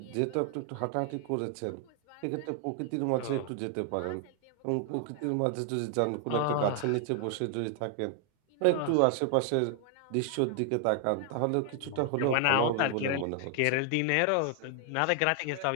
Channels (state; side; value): different; both; correlation 0.00